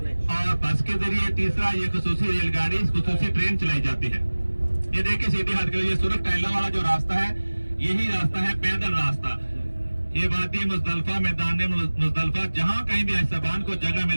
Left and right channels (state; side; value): inverted; both; correlation -1.00